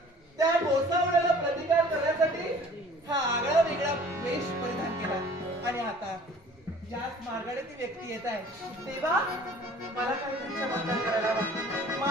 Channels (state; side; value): normal; both; correlation 0.50